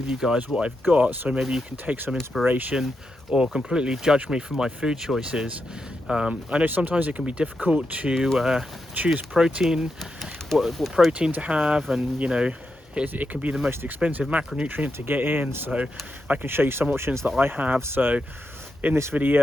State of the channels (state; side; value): normal; both; correlation 0.86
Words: you guys what I've got, so maybe you can take some inspiration or completely judge me for my food choices. I know sometimes it can be difficult to choose protein, what protein to have, and you know, it can be the most expensive macronutrient to get in, so I can show you some options that I have. So in this